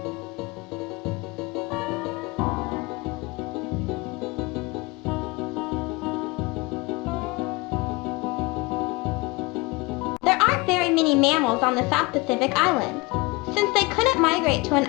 There aren't very many mammals on the South Pacific Islands. Since they couldn't migrate to an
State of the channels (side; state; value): right; quieter; 24.1 dB